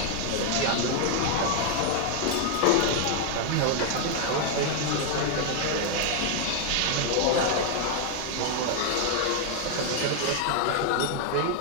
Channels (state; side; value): different; both; correlation 0.00